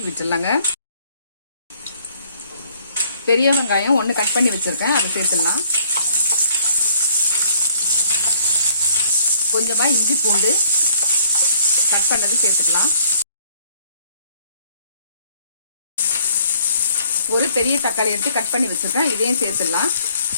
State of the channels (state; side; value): inverted; both; correlation -0.62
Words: விட்டுடலாங்க. பெரிய வெங்காயம் 1 கட் பண்ணி வச்சிருக்கேன், அதை சேர்த்துடலாம். கொஞ்சமா இஞ்சி பூண்டு கட் பண்ணது சேர்த்துக்கலாம். ஒரு பெரிய தக்காளி எடுத்து கட் பண்ணி வச்சிருக்கேன், இதையும் சேர்த்துடலாம்.